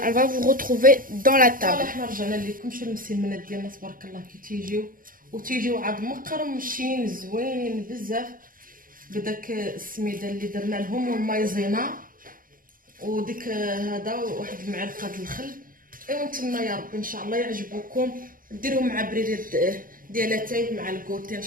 on va vous retrouver dans la table. صراحه حنا رجعنا لكم شي المسمنات ديالنا تبارك الله كي تيجيو عاد مقرمشين زوينين بزاف بداك السميده اللي درنا لهم والمايزينا وديك هذا واحد المعلقه د الخل. ايوا نتمنى يا ربي ان شاء الله يعجبوكم ديروه مع بريد ديالاتاي مع الكوتي ان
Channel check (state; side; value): late; left; 0.40 ms